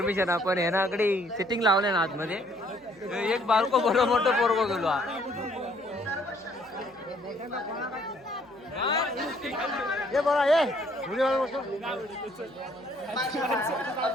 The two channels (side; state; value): right; noise; hum, 30 dB below the sound